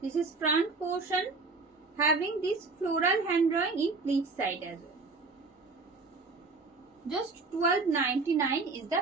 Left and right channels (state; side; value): quieter; left; 3.9 dB